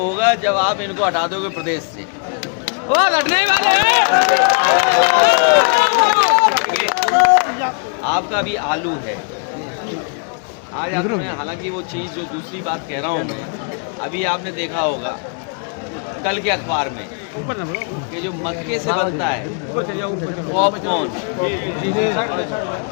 जब आप इनको हटा दोगे प्रदेश से। आपका भी आलू है आज आप में, हालांकि वो चीज़ जो दूसरी बात कह रहा हूँ मैं, अभी आपने देखा होगा कल के अखबार में कि जो मक्के से बनता है पॉपकॉर्न,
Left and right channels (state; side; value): quieter; right; 38.9 dB